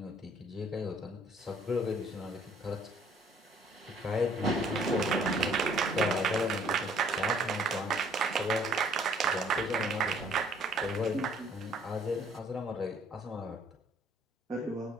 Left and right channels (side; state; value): both; normal; correlation 0.60